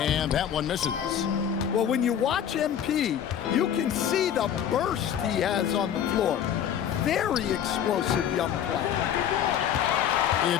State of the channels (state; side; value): quieter; right; 9.4 dB